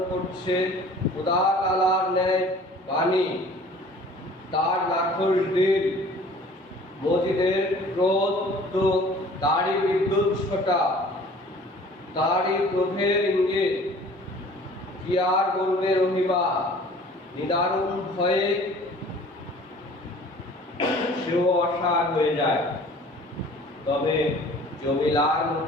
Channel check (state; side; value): normal; both; correlation 0.49